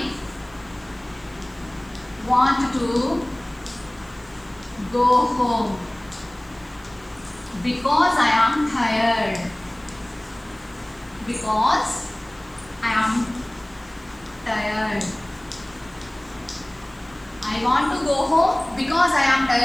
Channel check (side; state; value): right; noise; hiss, 28 dB below the sound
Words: want to go home because I am tired. Because I am tired. I want to go home because I am